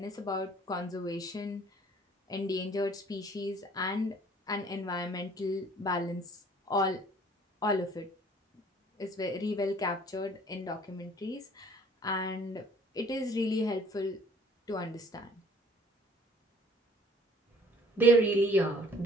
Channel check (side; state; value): both; normal; correlation 0.55